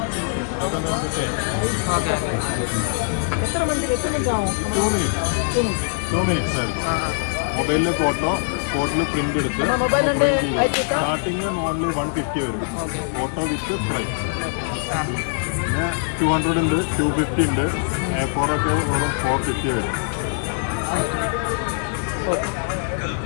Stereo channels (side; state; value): right; silent; 64 dB below the other